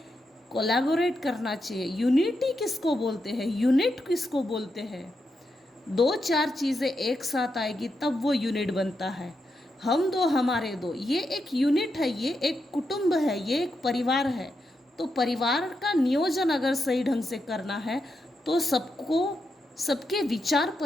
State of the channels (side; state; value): both; normal; correlation 0.85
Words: कोलैबोरेट करना चाहिए। यूनिटी किसको बोलते हैं, यूनिट किसको बोलते हैं। दो चार चीज़ें एक साथ आएगी तब वो यूनिट बनता है। हम दो हमारे दो, ये एक यूनिट है, ये एक कुटुंब है, ये एक परिवार है। तो परिवार का नियोजन अगर सही ढंग से करना है तो सबके विचार